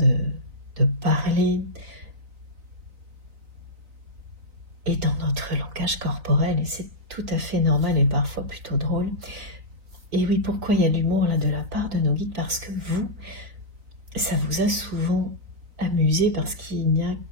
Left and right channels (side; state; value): left; late; 3.9 ms